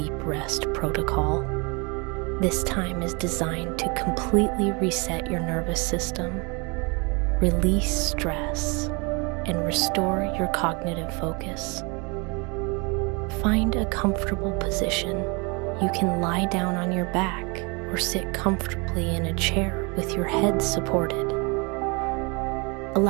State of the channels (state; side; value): quieter; left; 30.3 dB